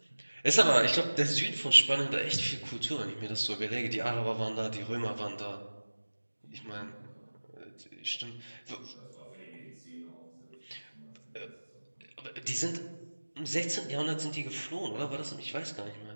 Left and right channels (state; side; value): inverted; both; correlation -1.00